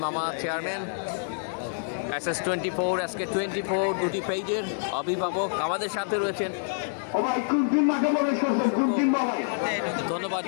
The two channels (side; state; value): right; silent; digital silence